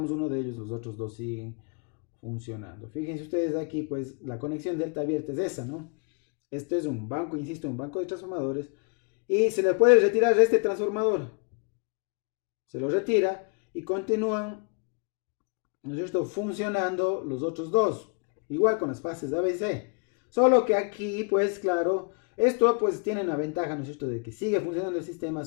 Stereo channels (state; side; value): quieter; right; 35.1 dB